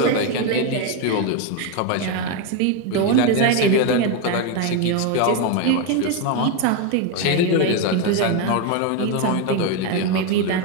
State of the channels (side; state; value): both; different; correlation 0.02